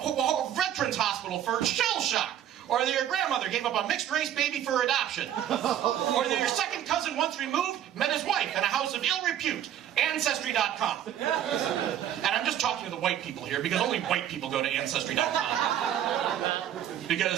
veterans hospital for shell shock, or that your grandmother gave up a mixed-race baby for adoption, or that your second cousin once removed met his wife in a house of ill repute. Ancestry.com. And I'm just talking to the white people here, because only white people go to Ancestry.com.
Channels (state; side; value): quieter; left; 10.7 dB